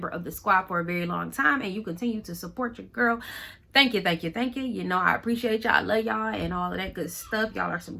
of the squad for a very long time and you continue to support your girl, thank you. You know, I appreciate y'all, I love y'all, and all of that good stuff. Y'all are some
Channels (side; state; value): both; identical; correlation 1.00